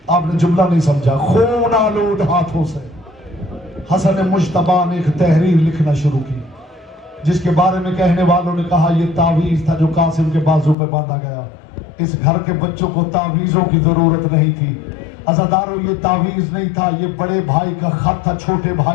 आपने जुमला नहीं समझा, खून आलूद हाथों से हसन मुश्तबा ने एक तहरीर लिखना शुरू की, जिसके बारे में कहने वालों ने कहा यह तावीज था जो कासिम के बाजू पे बांधा गया। इस घर के बच्चों को तावीजों की जरूरत नहीं थी। अज़ादारों, ये तावीज नहीं था, ये बड़े भाई का खत था छोटे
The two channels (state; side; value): drops out; right; at 10.8 s